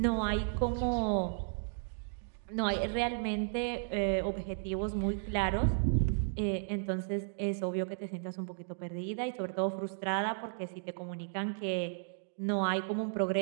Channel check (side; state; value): left; silent; digital silence